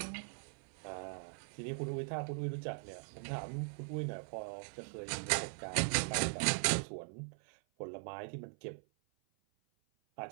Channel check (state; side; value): silent; left; 51 dB below the other